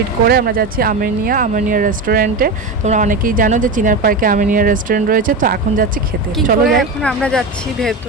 করে আমরা যাচ্ছি আমিনিয়া রেস্টুরেন্টে। তোমরা অনেকেই জানো যে চিনার পার্কে আমিনিয়া রেস্টুরেন্ট রয়েছে। তো এখন যাচ্ছি খেতে, চলো যাই। এখন আমরা যাচ্ছি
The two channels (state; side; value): quieter; left; 3.2 dB